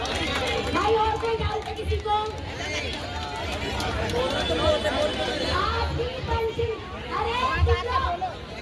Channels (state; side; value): identical; both; correlation 1.00